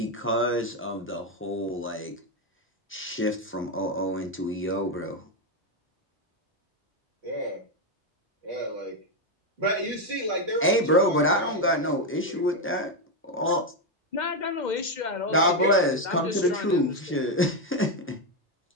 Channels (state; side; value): normal; both; correlation 0.06